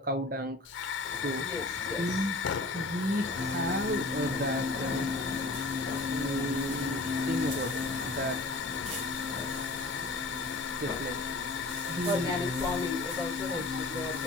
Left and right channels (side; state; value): right; quieter; 3.0 dB